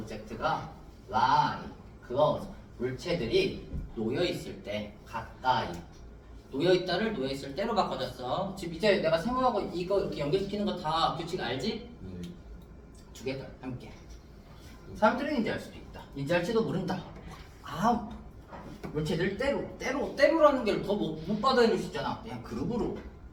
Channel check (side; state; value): both; identical; correlation 1.00